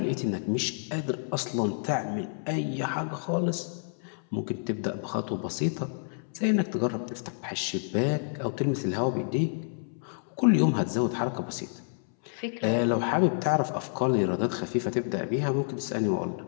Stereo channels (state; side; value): silent; right; 59 dB below the other